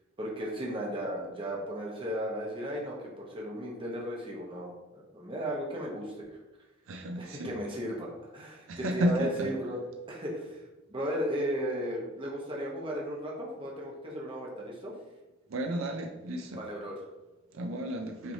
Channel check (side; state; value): both; normal; correlation 0.50